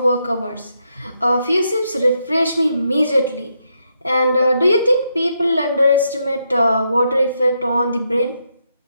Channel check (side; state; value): both; inverted; correlation -0.80